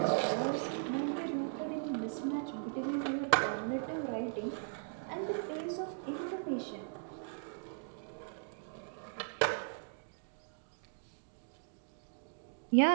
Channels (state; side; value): silent; left; digital silence